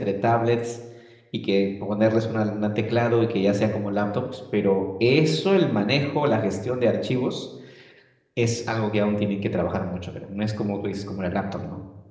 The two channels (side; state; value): both; identical; correlation 1.00